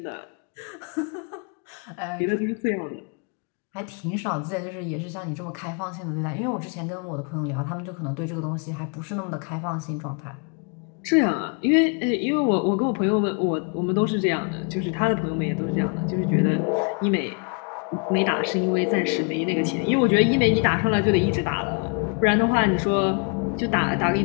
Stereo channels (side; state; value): right; quieter; 37.9 dB